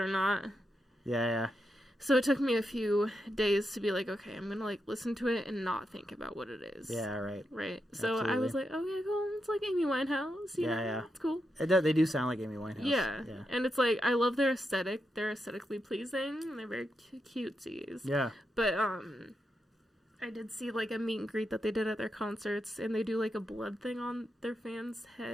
not. Yeah. So it took me a few days to be like, okay, I'm going to like listen to it and not think about what it is. Yeah, right. Right. So Absolutely. I was like, okay, cool. It's like Amy Winehouse. You know? It's cool. They do sound like Amy Winehouse. Yeah. And it's like, I love their aesthetic. They're aesthetically pleasing. And they're very cutesies. Yeah. But, I did see like a meet and greet that they did at their concerts. And they do like a blood thing on their fans'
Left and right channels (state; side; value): normal; both; correlation 0.85